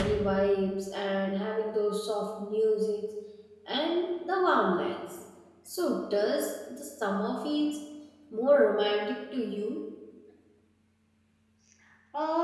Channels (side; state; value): both; identical; correlation 1.00